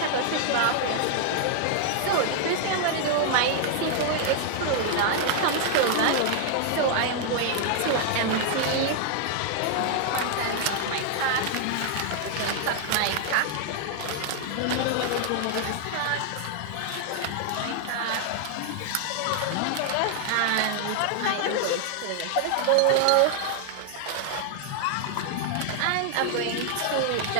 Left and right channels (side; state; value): both; different; correlation 0.00